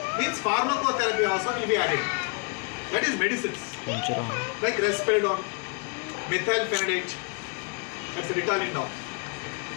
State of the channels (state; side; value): quieter; right; 33.5 dB